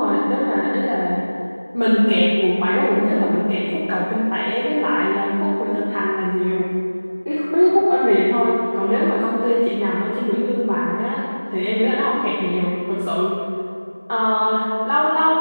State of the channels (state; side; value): inverted; both; correlation -1.00